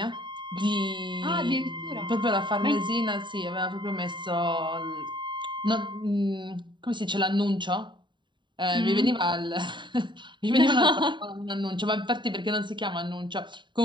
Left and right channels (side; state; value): left; late; 0.23 ms